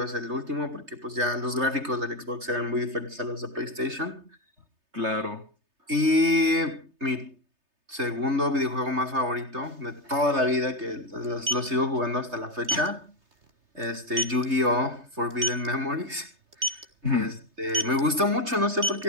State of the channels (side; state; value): left; late; 3.3 ms